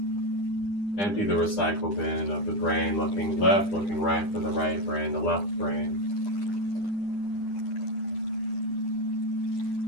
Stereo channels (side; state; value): right; late; 9.9 ms